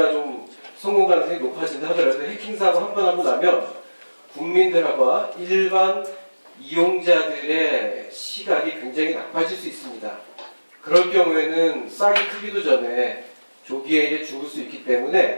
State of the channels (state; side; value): inverted; both; correlation -1.00